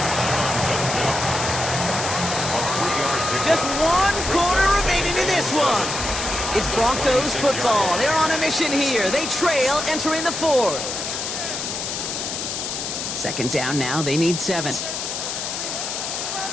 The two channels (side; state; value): left; noise; hiss, 4 dB below the sound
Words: Just 1 quarter remaining in this one. It's Broncos football. They're on a mission here. They trail entering the 4th. Second down now. They need 7.